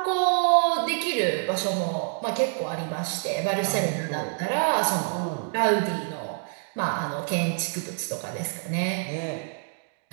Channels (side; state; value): left; silent; 60 dB below the other